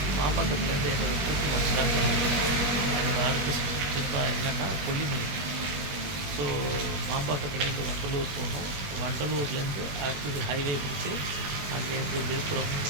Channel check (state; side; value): late; left; 21 ms